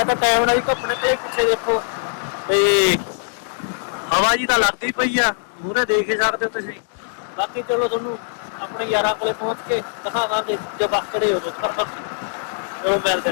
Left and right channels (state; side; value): silent; right; digital silence